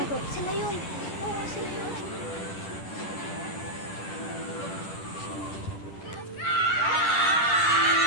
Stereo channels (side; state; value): right; late; 10 ms